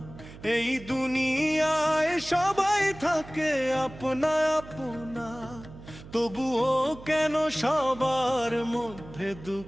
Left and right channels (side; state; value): right; noise; hum, 17 dB below the sound